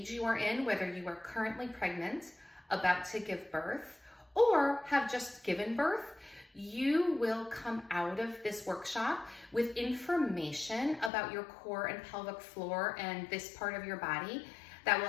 you are in, whether you are currently pregnant, about to give birth, or have just given birth, you will come out of this workshop with information about your core and pelvic floor and this part of your body that will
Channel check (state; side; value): drops out; right; at 11.1 s